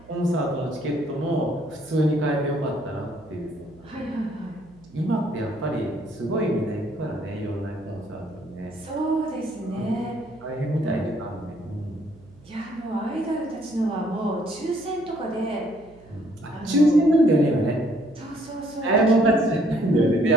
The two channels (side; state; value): right; noise; hum, 25 dB below the sound